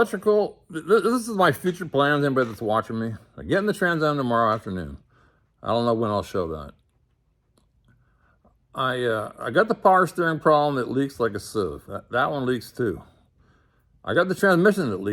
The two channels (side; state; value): both; identical; correlation 1.00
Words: this is my future plans, anybody that's watching me. I'm getting the Trans Am tomorrow afternoon. I don't know when I'll show that. I got the power steering problem that leaks like a sieve. That one leaks too. I got the transmission that